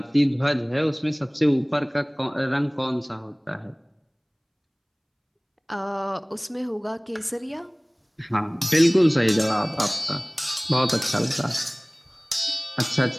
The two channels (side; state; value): both; identical; correlation 1.00